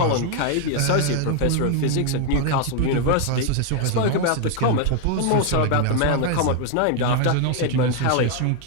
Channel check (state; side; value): different; both; correlation 0.00